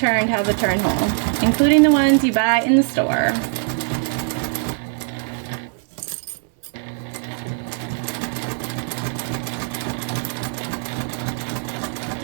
has a turn hole, including the ones you buy in the store.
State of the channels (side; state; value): left; silent; digital silence